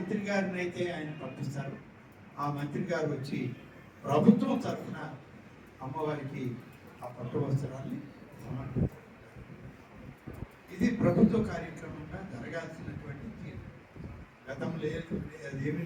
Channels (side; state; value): both; identical; correlation 1.00